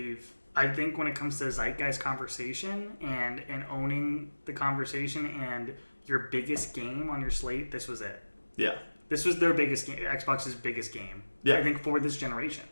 think when it comes to zeitgeist conversation and owning the conversation and your biggest game on your slate, this was it. Yeah. This was their biggest game, Xbox's biggest game. Yeah. I think for this generation.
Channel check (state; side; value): inverted; both; correlation -1.00